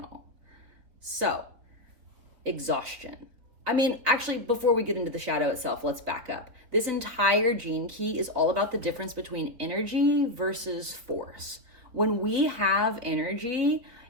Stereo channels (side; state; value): left; late; 4.3 ms